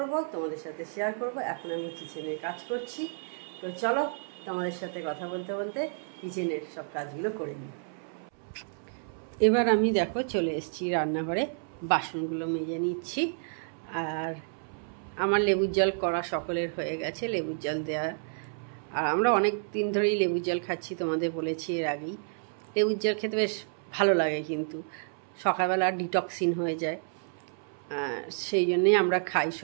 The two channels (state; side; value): silent; left; 58 dB below the other